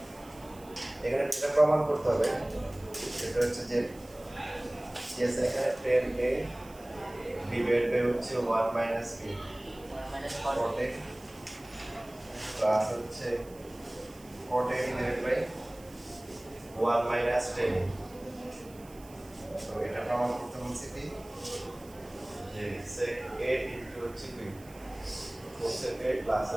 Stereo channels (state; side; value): noise; right; hiss, 23 dB below the sound